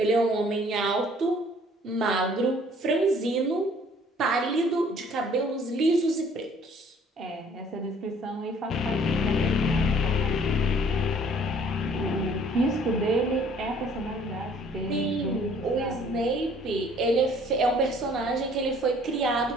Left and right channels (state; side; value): normal; both; correlation 0.57